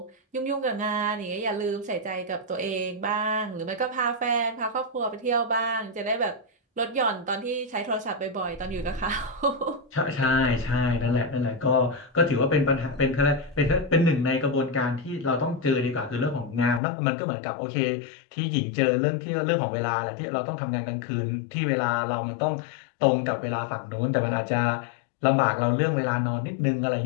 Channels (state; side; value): drops out; right; at 16.8 s